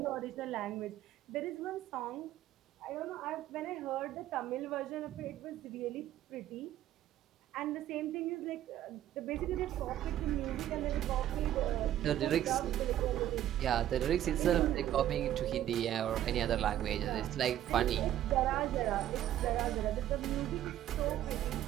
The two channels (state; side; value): quieter; left; 12.3 dB